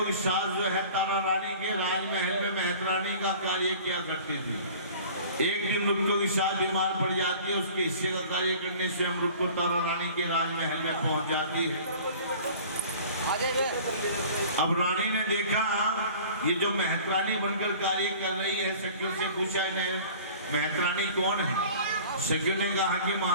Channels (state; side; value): inverted; both; correlation -0.45